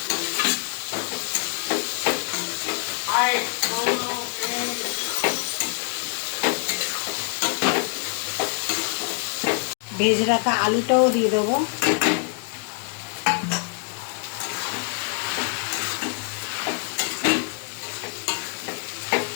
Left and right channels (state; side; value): quieter; right; 39.0 dB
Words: ভেজে রাখা আলুটাও দিয়ে দেবো।